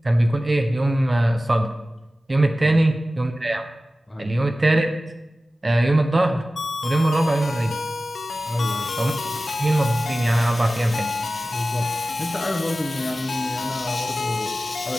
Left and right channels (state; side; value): normal; both; correlation 0.96